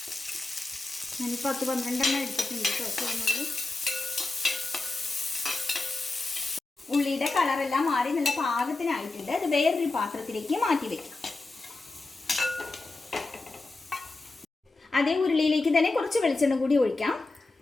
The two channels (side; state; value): right; quieter; 3.3 dB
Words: ഞാനിപ്പോൾ 10-12 എടുത്തിട്ടുണ്ട് കേട്ടോ ചുവന്നുള്ളി. ഉള്ളിയുടെ കളറെല്ലാം മാറി നല്ല പാകത്തിനായിട്ടുണ്ട്. അത് വേറൊരു പാത്രത്തിലേക്ക് മാറ്റി വെക്കാം. അതേ ഉരുളിയിലേക്ക് തന്നെ കുറച്ച് വെളിച്ചെണ്ണ കൂടി ഒഴിക്കാം.